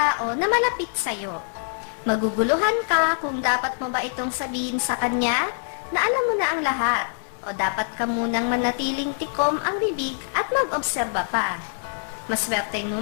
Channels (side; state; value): right; silent; 62 dB below the other